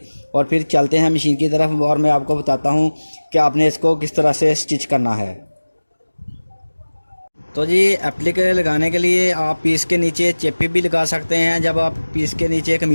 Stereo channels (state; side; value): inverted; both; correlation -1.00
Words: और फिर चलते हैं मशीन की तरफ और मैं आपको बताता हूँ कि आपने इसको किस तरह से स्टिच करना है। तो जी एप्लिक लगाने के लिए आप पीस के नीचे चेपी भी लगा सकते हैं। जब आप पीस के नीचे